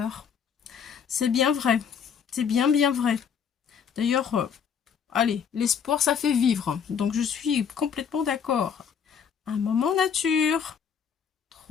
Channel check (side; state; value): right; quieter; 7.2 dB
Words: C'est bien vrai. C'est bien vrai. D'ailleurs, allez, l'espoir, ça fait vivre. Donc, je suis complètement d'accord. Un moment nature.